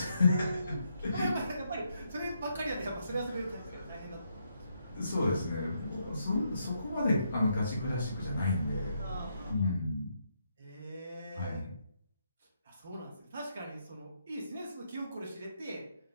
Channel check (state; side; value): inverted; both; correlation -0.77